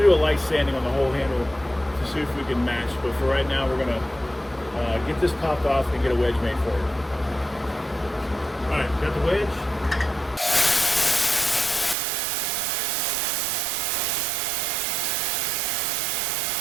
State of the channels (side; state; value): left; drops out; at 12.0 s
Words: do a light sanding on the whole handle to see if we can match. But for right now, we're going to get this popped off and get a wedge made for it. All right, got the wedge.